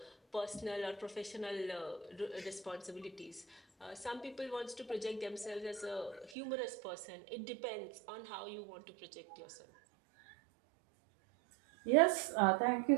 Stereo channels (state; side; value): drops out; left; at 6.4 s